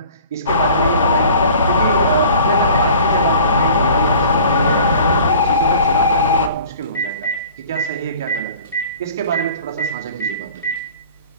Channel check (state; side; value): inverted; both; correlation -0.46